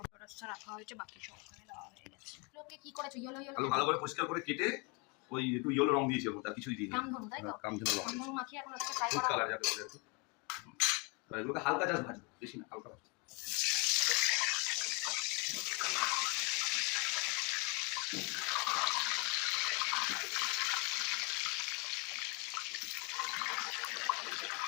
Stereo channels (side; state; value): right; quieter; 31.1 dB